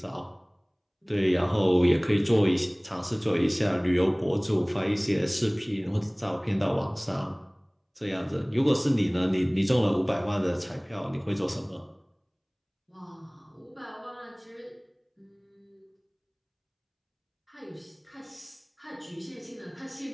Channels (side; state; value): both; identical; correlation 1.00